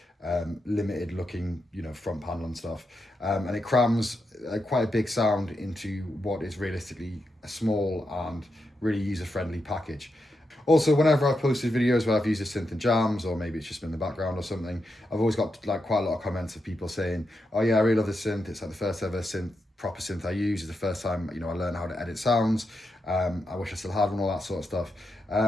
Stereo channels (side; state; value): both; normal; correlation 0.85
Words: limited looking, front panel and stuff. And it crams quite a big sound into what is realistically a small and really user-friendly package. Also, whenever I've posted videos where I've used a synth in jams, or maybe it's just been in the background or something, I've always got like quite a lot of comments of people saying, oh yeah, I really love this synth. It's like the first ever proper synth I use. It's the first time, I learned how to edit sounds. I wish I still had one, all that sort of stuff.